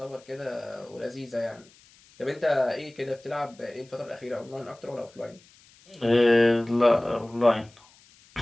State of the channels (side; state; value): left; noise; hiss, 27 dB below the sound